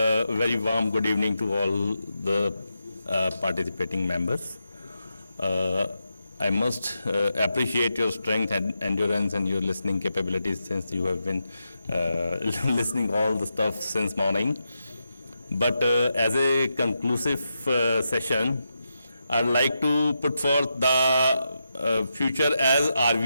warm good evening to all the participating members. I must appreciate your strength and endurance and your listening capabilities since you have been listening all the stuff since morning. But as a conclusive session, I'd like to put forth the future as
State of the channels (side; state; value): both; inverted; correlation -0.86